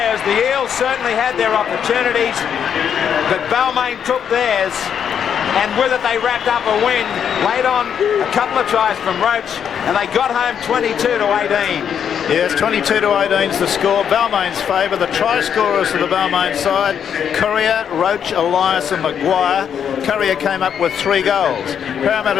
The Eels certainly had their opportunities, but Balmain took theirs, and with it they wrapped up a win. Laid on a couple of tries from Roach, and they got home 22-18. Yes, 22-18 is the score. Balmain's favour. The try scorers for the Balmain side: Courier, Roach, Elias and Maguire. Courier came up with 3 goals.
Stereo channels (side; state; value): right; quieter; 8.2 dB